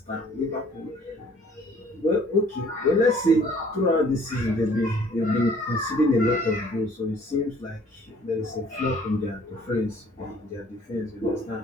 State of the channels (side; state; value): both; normal; correlation 0.56